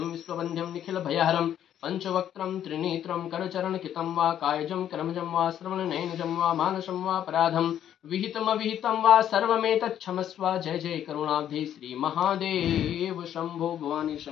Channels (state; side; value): quieter; right; 10.4 dB